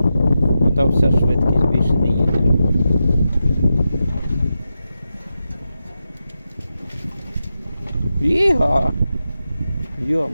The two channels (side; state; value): both; inverted; correlation -0.89